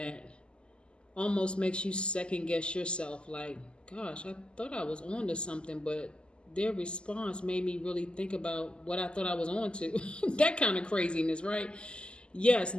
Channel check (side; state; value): right; late; 0.050 ms